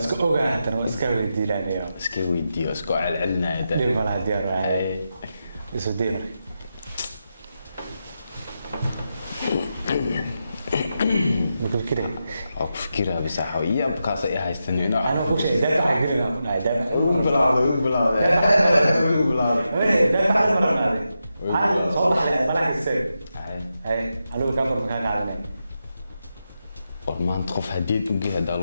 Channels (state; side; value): inverted; both; correlation -0.88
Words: iska ogaa haddana waa iska weydiilaanaya اسكي ويديو اسكو علنا dhib malaha diyaar هاي isu diyaar makal kiray او فكرها بصحة ويا بقاس اي هايستني ana انا ku sheegay daafac aan gelina ku dhahay daafac ugu bilaawday daafac la marnaaday soo baxay madaxiisa هاي hay anigu ka marka ka qaadanay والله انت قف هديد وجي هدا